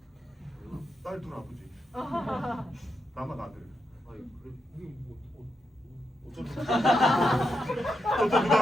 딸 둘 아버지. 나만 아들. 또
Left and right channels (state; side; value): normal; both; correlation 0.84